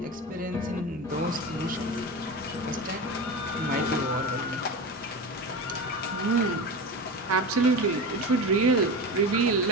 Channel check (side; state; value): both; normal; correlation 0.25